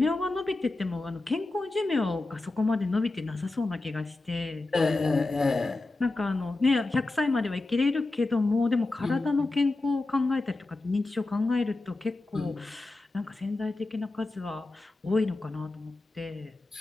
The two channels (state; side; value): quieter; right; 3.1 dB